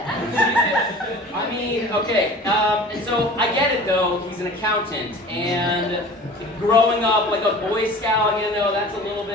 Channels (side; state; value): both; normal; correlation 0.42